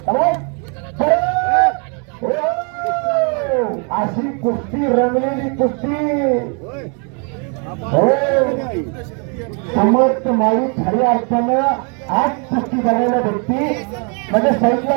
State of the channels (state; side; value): quieter; left; 37.5 dB